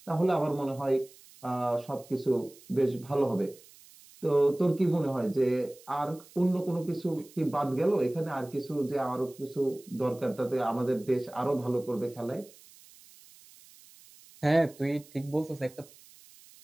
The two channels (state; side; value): noise; right; hiss, 23 dB below the sound